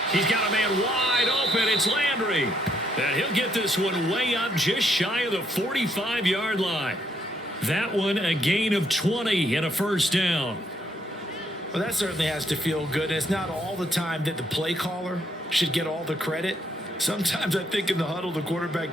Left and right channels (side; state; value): both; normal; correlation 0.72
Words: He's got a man wide open. It's Landry. And he'll get this one way up just shy of the 45-yard line. That one a gain of 20 and a 1st down. Well, that certainly has to feel good. And it's not all the time that the play caller should get all the credit. Sometimes I think in the huddle, the